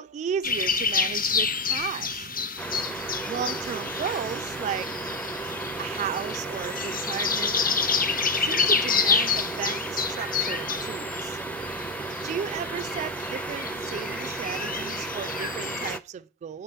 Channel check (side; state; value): both; normal; correlation 0.11